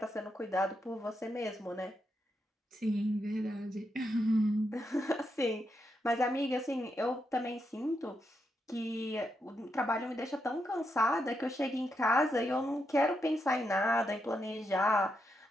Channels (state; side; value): normal; both; correlation 0.83